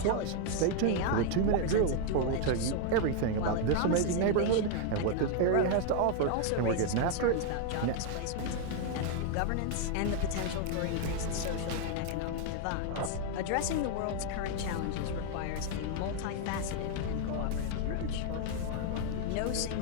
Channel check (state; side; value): different; both; correlation 0.00